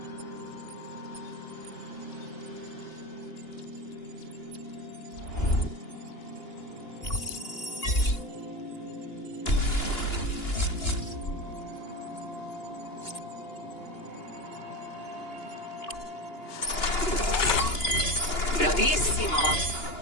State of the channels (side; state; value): right; late; 2.9 ms